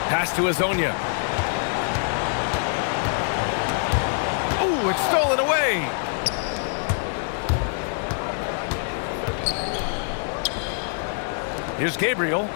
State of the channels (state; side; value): silent; right; 62 dB below the other